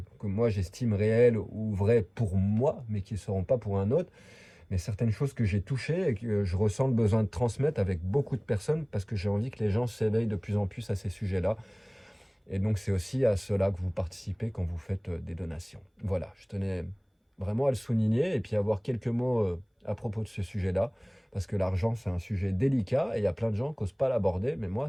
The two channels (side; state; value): both; identical; correlation 1.00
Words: que moi j'estime réelles ou vraies pour moi, mais qui ne seront pas pour un autre, mais certaines choses que j'ai touchées et que je ressens le besoin de transmettre avec beaucoup de personnes parce que j'ai envie que les gens s'éveillent de plus en plus à ces sujets-là. Et donc c'est aussi à cela que vous participez quand vous faites des donations. Voilà, je tenais vraiment à le souligner et puis avoir quelques mots à propos de ce sujet-là, parce que l'argent c'est un sujet délicat et il y a plein de gens qui n'osent pas l'aborder, mais moi